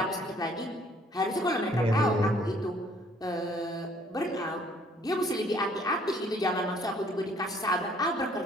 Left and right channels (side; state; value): both; normal; correlation 0.61